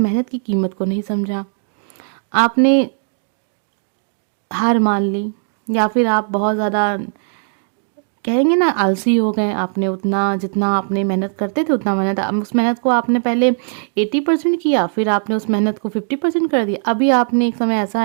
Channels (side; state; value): left; silent; digital silence